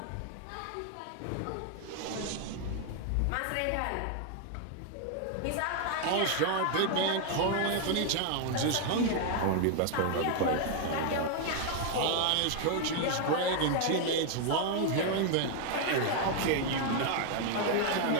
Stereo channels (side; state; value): both; different; correlation 0.00